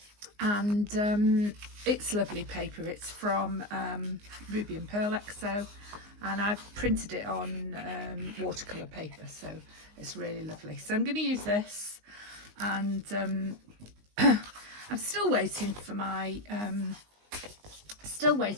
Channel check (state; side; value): late; left; 19 ms